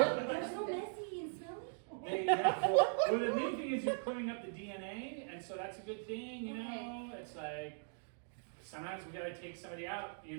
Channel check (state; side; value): silent; left; digital silence